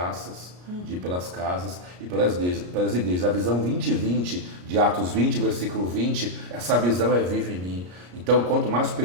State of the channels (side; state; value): left; late; 33 ms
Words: de ir pelas casas e pelas igrejas. A visão 2020 de Atos 20, versículo 20, essa visão é viva em mim. Então, quanto mais